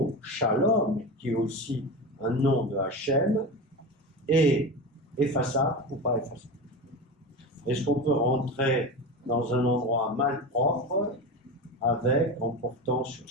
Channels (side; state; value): both; normal; correlation 0.25